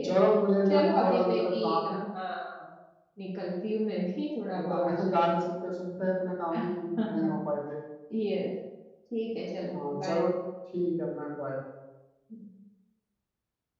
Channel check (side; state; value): both; identical; correlation 1.00